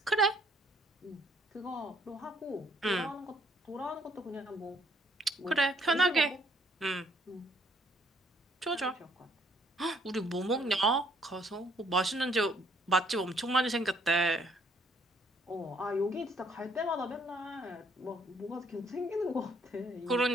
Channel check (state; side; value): normal; both; correlation 0.65